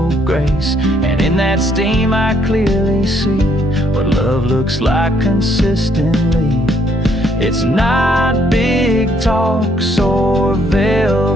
grace. And in that steam I clearly see what love looks like consistently. It's not big talks or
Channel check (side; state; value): both; normal; correlation 0.69